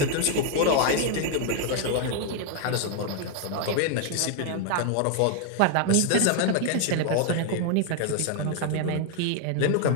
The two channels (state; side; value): different; both; correlation 0.00